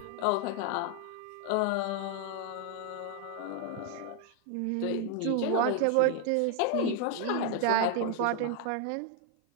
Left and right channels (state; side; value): different; both; correlation 0.00